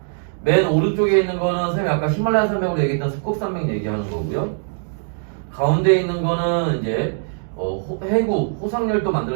맨 오른쪽에 있는 거는 선생님이 아까 히말라야 산맥으로 얘기했던 습곡산맥 얘기하는 거고요. 가운데 있는 거는 이제 해구, 호상열도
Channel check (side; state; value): left; silent; digital silence